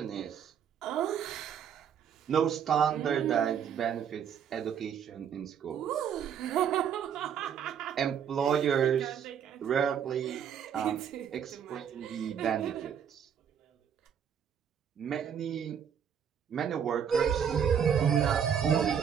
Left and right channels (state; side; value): quieter; left; 8.2 dB